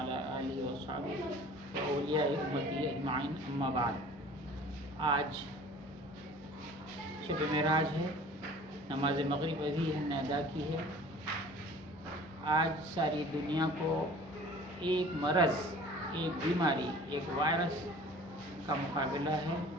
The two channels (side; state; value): both; normal; correlation 0.46